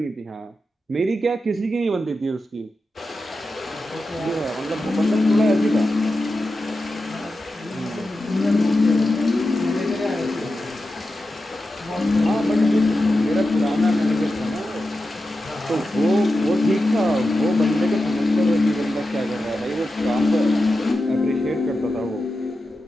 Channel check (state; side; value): normal; both; correlation 0.91